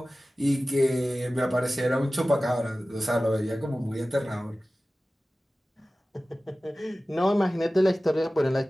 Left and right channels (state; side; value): normal; both; correlation 0.96